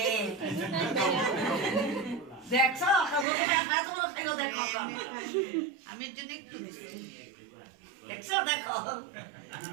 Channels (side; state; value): left; drops out; at 3.2 s